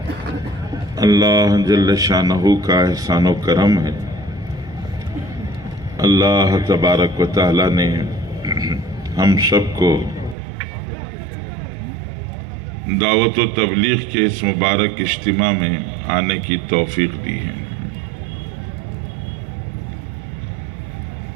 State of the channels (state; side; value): drops out; left; at 10.4 s